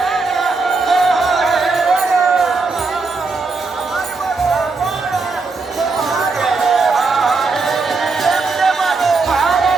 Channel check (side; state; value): left; quieter; 4.0 dB